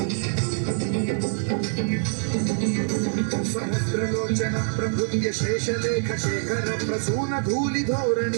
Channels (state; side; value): silent; left; 62 dB below the other